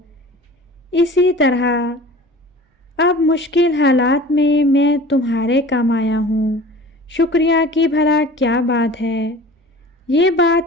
اسی طرح اب مشکل حالات میں میں تمہارے کام آیا ہوں۔ شکریہ کی بھلا کیا بات ہے۔ یہ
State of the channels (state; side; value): normal; both; correlation 0.41